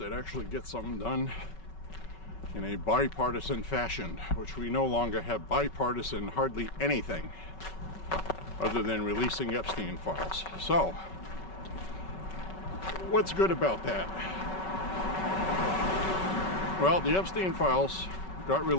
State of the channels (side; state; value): right; late; 5.3 ms